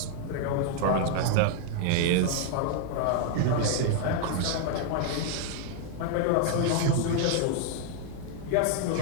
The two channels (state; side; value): different; both; correlation 0.00